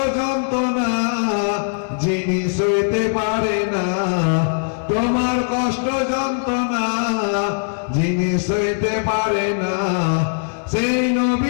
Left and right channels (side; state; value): right; silent; digital silence